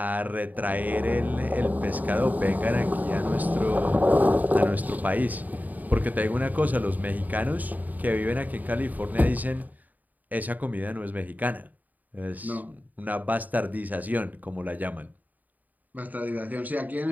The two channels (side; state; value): left; late; 0.081 ms